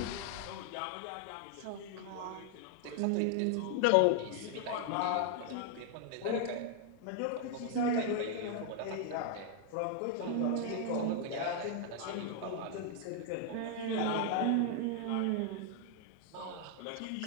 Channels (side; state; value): both; different; correlation 0.00